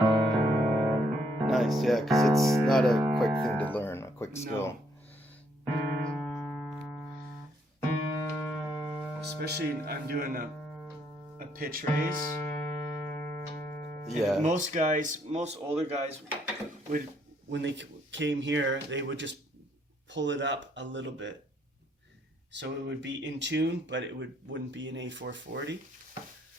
Nice, yeah, because it's not a quick thing to learn, a quick skill. Especially I'm doing a pitch raise. Yeah. And most older guys would, when they came here, they would just pull it up a little bit. So it would be in tune, but it wouldn't be an A440.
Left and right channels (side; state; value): both; normal; correlation 0.70